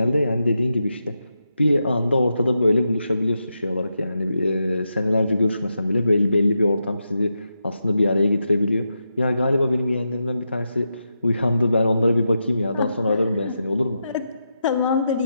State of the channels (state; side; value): inverted; both; correlation -0.86